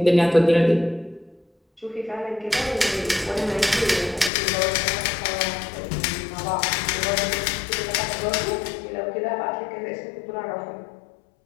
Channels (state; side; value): drops out; right; at 4.3 s